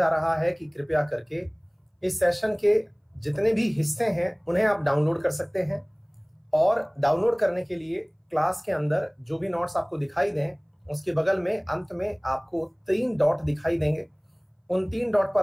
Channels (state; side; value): identical; both; correlation 1.00